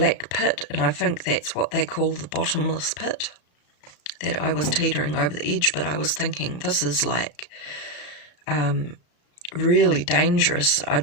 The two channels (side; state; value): right; late; 34 ms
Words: pit, and I think that's what they call the bottomless pit, that I was teetering over the edge. But I was thinking, this is like really dangerous. I